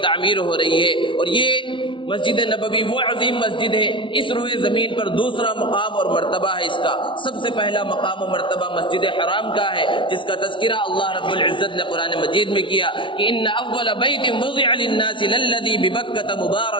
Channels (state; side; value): late; right; 0.25 ms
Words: ہو رہی ہے، اور یہ مسجد نبوی وہ عظیم مسجد ہے، اس روئے زمین پر دوسرا مقام اور مرتبہ ہے اس کا۔ سب سے پہلا مقام و مرتبہ مسجد حرام کا ہے، جس کا تذکرہ اللہ رب العزت نے قرآن مجید میں کیا کہ ان اول بیت وضع للناس للذی ببکۃ